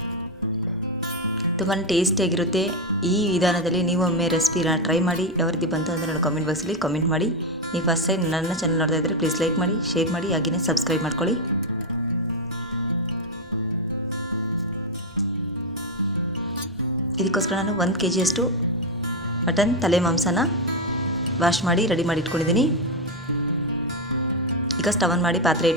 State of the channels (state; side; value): normal; both; correlation 0.07